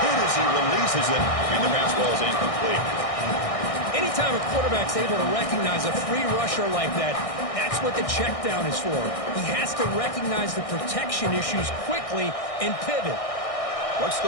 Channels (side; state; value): right; late; 1.6 ms